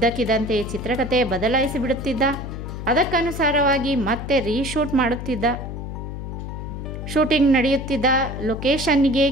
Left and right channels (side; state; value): left; noise; hum, 7 dB below the sound